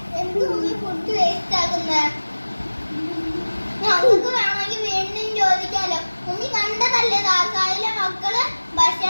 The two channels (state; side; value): inverted; both; correlation -1.00